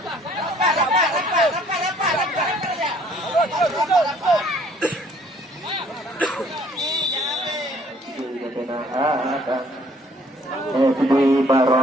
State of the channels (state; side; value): normal; both; correlation 0.59